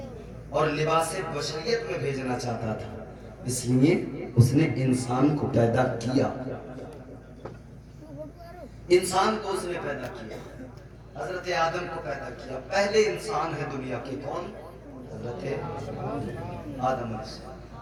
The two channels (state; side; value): identical; both; correlation 1.00